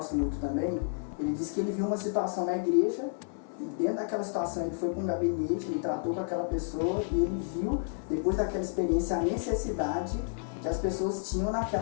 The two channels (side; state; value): right; silent; 57 dB below the other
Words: muito também, ele disse que ele viu uma situação na igreja, e dentro daquela situação ele foi para um gabinete, ele tratou com aquela pessoa e ele viu, depois daquela experiência, a necessidade que as pessoas tinham